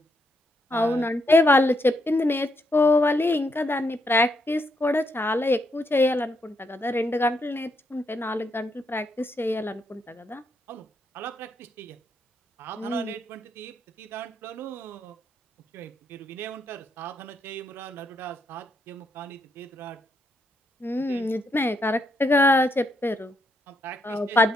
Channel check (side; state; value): both; normal; correlation 0.77